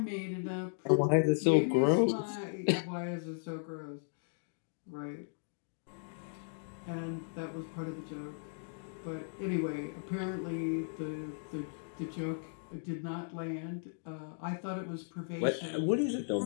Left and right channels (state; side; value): silent; right; digital silence